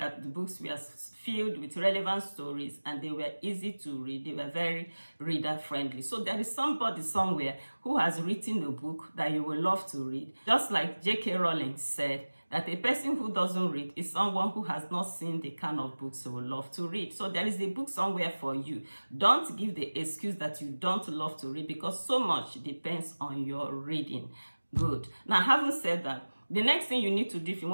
the books were filled with relevant stories and they were easy to read. They were very reader-friendly. So there is somebody somewhere who has written a book that you will love to read. Just like J.K. Rowling said, that a person who doesn't read is someone who has not seen the kind of books they will love to read. So there is a book somewhere for you. Don't give the excuse that you don't love to read, because so much depends on your reading. Good. Now, having said that, the next thing you need to do if you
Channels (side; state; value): both; inverted; correlation -1.00